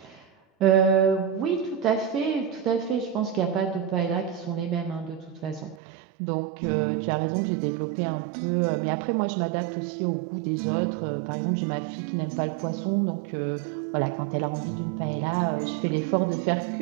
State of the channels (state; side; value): drops out; left; at 5.8 s